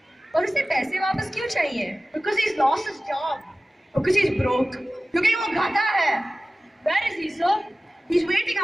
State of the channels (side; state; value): both; normal; correlation 0.97